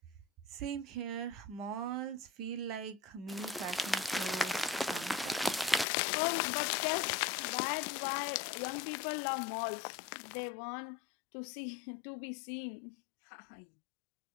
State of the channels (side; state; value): right; drops out; at 5.9 s